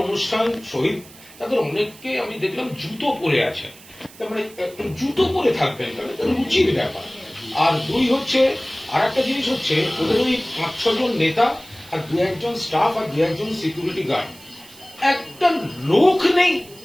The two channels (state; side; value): noise; right; hiss, 21 dB below the sound